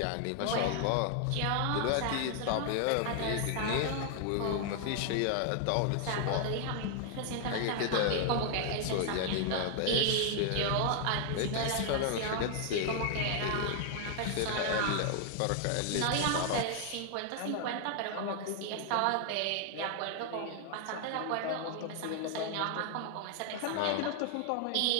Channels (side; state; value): both; different; correlation 0.00